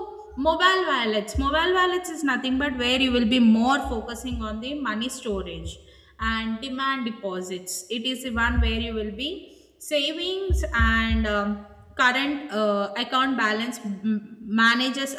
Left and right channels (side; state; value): both; identical; correlation 1.00